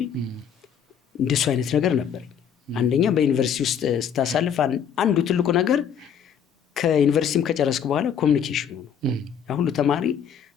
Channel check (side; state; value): right; quieter; 7.9 dB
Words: እንደሱ አይነት ነገር ነበረኝ። አንደኛ በዩኒቨርሲቲ ውስጥ ስታሳልፍ አንዱ ትልቁ ነገር ከዩኒቨርሲቲም ከጨረስክ በኋላ ኮሚኒኬሽኑ ነው። ሁሉ ተማሪ